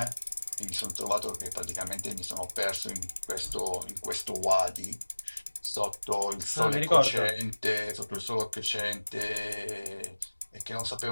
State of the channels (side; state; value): both; inverted; correlation -1.00